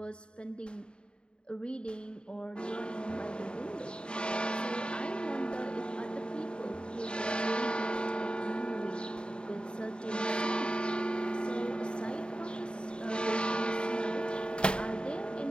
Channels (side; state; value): right; late; 0.052 ms